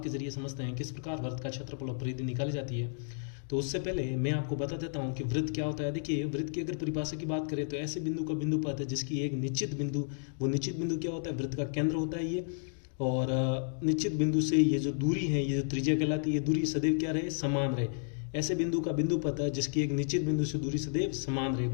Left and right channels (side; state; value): right; silent; digital silence